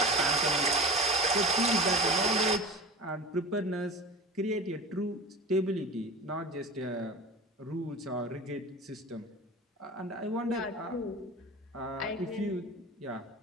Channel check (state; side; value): normal; both; correlation 0.33